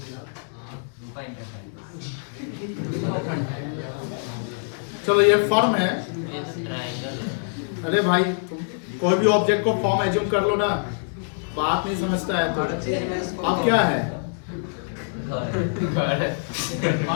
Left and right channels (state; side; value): silent; right; 62 dB below the other